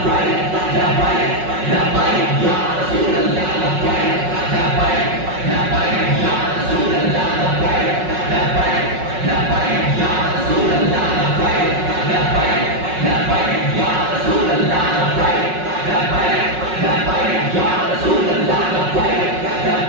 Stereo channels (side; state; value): left; late; 5.4 ms